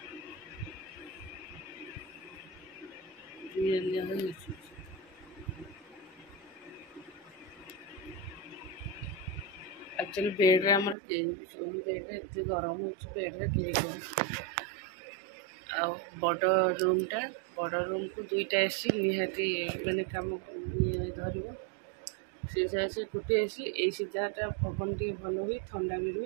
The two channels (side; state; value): left; drops out; at 11.0 s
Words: एक्चुअली बेड्रे आम कहीं भी शोन बेड्रे एत गरम हो बेड्रे कहीं शोन बड़ रूमटा बड़ रूम को दुईटा एसी निहाती मैंने कम धर से गोटे एसी द्वारा पवन टे भल हुए ठंडा भी